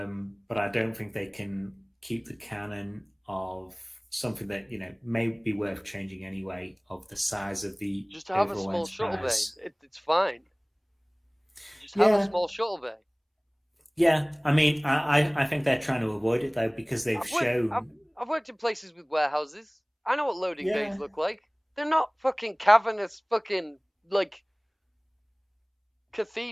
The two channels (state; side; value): identical; both; correlation 1.00